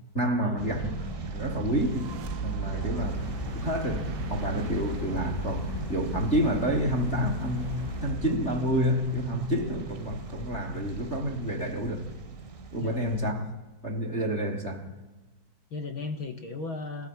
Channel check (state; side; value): late; right; 4.6 ms